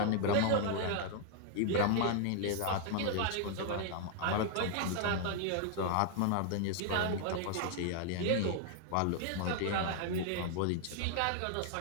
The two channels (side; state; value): both; different; correlation 0.00